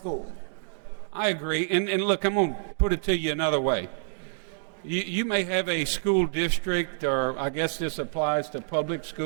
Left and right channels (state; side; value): silent; left; digital silence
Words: I agree. And look, I'm going to put it to you another way. You may have a school district, or I guess this applies to public